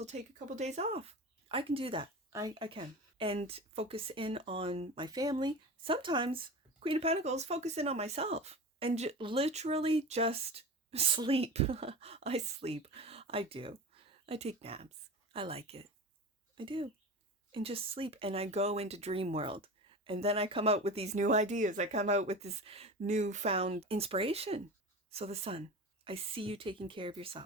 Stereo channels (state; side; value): normal; both; correlation 0.30